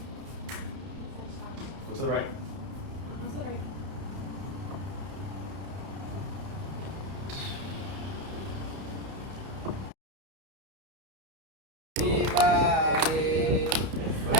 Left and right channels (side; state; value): left; late; 31 ms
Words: What's the right? That's what I.